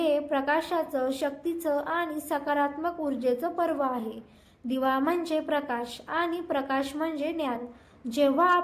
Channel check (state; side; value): identical; both; correlation 1.00